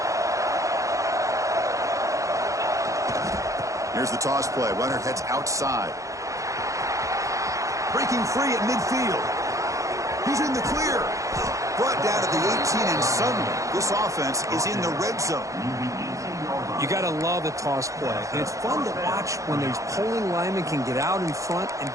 Here's the toss play. Runner heads outside. Breaking free at midfield. He's in the clear. Brought down at the 18, and suddenly this offense is in the red zone. You got to love the toss play. And it's fun to watch when these pulling linemen can get out in front and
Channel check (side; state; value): left; late; 0.15 ms